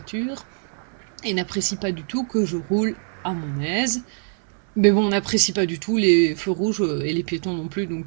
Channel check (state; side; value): silent; left; 63 dB below the other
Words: et n'apprécient pas du tout que je roule à mon aise. Mais bon, on n'apprécie pas du tout les feux rouges et les piétons non plus,